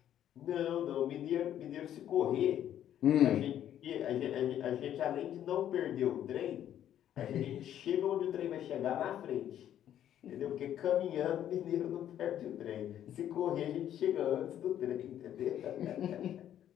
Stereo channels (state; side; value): quieter; right; 10.9 dB